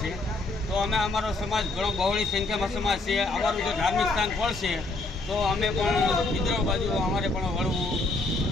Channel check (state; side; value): quieter; right; 3.2 dB